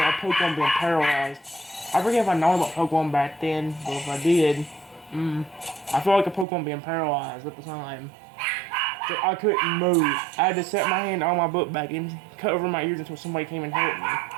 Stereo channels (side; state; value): left; drops out; at 6.5 s